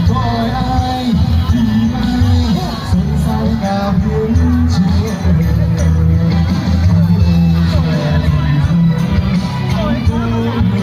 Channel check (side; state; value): both; identical; correlation 1.00